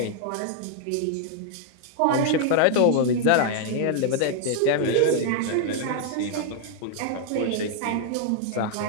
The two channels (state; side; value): different; both; correlation 0.00